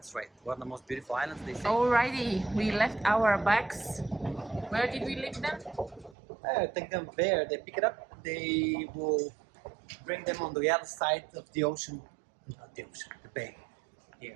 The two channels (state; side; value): drops out; left; at 6.2 s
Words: right, one of the most beautiful islands they say. Alrighty, we left our bags. Where did we leave them? Take them there, they pick it up, they will bring them on the other side of the ocean, not the ocean, the bay.